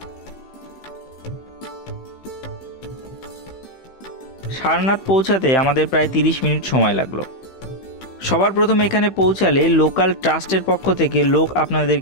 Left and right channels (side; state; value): right; late; 15 ms